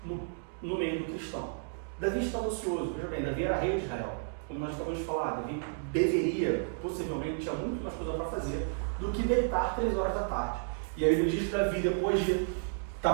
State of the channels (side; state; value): left; silent; digital silence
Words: no meio do cristão. Davi estava ocioso. Veja bem, Davi era rei de Israel. Como nós acabamos de falar, Davi deveria, possivelmente, tinha muito mais coisa para fazer do que deitar 3 horas da tarde. E aí ele diz que Davi, depois de